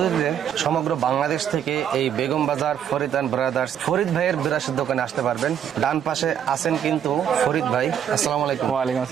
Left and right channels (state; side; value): quieter; left; 9.1 dB